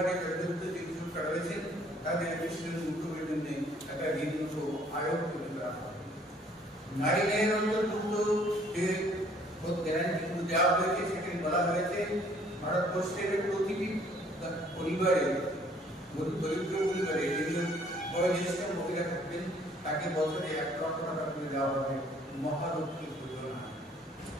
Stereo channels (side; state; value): both; normal; correlation 0.59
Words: জর্জরিত যে কৃষকরা রয়েছে তাদের বিশ্লেষণ উদ্যোগের জন্য একটা ঋণ আয়োগ তৈরি করা হবে। নারী ন্যায়ের অন্তর্ভুক্ত যে গ্যারান্টিগুলো দেওয়া হয়েছে সেখানে বলা হয়েছে ভারতবর্ষের প্রতিটি পরিবারে, দরিদ্র পরিবারে যেগুলো বয়োজ্যেষ্ঠ মহিলা থাকবেন তাকে বছরে 1 লক্ষ টাকা করে দেওয়া হবে মহালক্ষ্মী যোজনা।